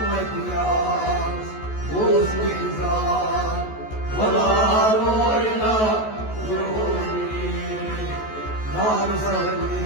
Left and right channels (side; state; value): right; late; 14 ms